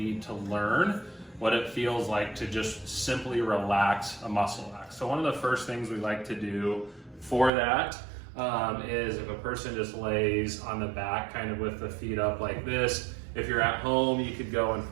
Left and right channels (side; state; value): left; drops out; at 7.5 s